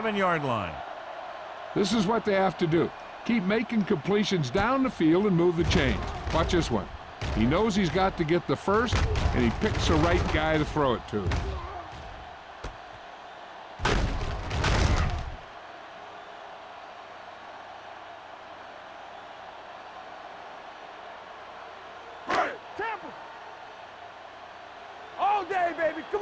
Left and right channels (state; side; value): identical; both; correlation 1.00